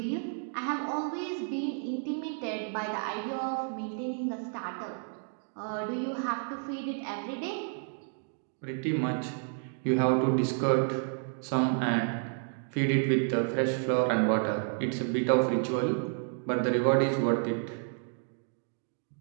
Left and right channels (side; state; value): left; silent; 57 dB below the other